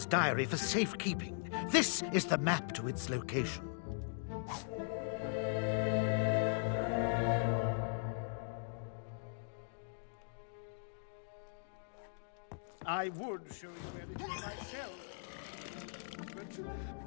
diary for safekeeping. This is the map to its location. I would show you where it is myself, but...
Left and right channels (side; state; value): right; silent; digital silence